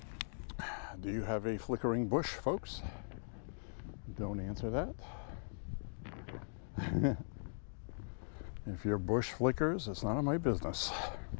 Do you have a flickering bush, folks? Don't answer that. If your bush flickers, it's none of my business.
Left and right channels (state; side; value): silent; right; digital silence